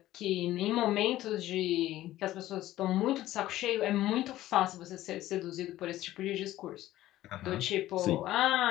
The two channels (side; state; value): right; quieter; 14.9 dB